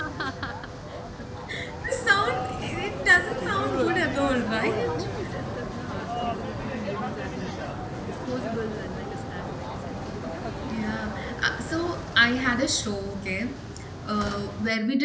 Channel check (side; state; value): both; identical; correlation 1.00